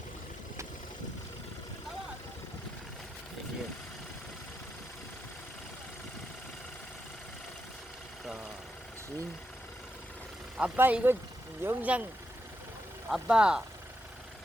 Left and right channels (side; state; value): both; normal; correlation 0.85